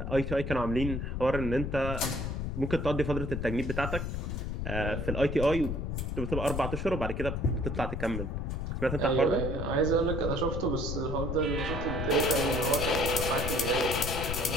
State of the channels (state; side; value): noise; left; rumble, 3 dB below the sound